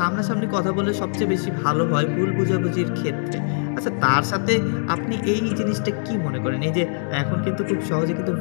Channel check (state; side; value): silent; right; digital silence